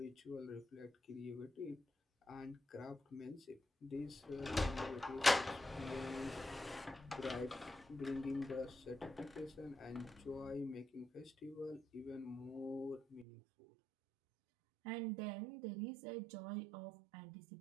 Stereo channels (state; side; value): drops out; left; at 13.2 s